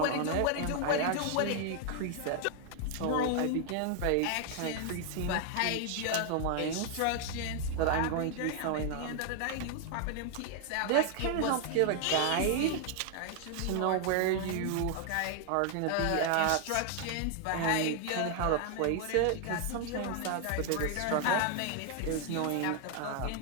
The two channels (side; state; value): both; different; correlation 0.00